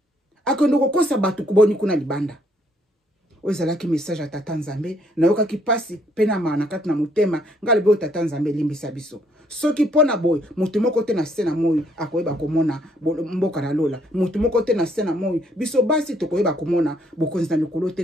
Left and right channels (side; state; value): both; normal; correlation 0.68